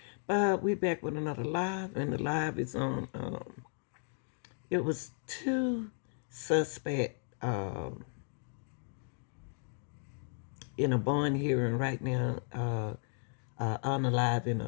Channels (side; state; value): right; silent; 55 dB below the other